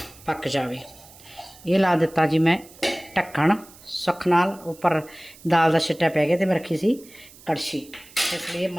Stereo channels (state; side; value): noise; right; hiss, 22 dB below the sound